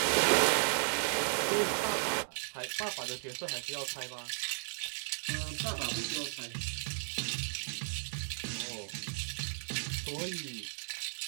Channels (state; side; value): silent; left; digital silence